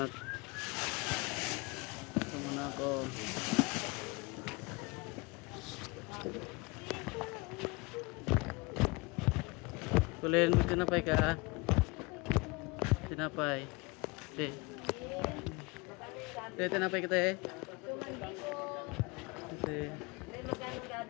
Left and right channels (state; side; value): quieter; right; 26.6 dB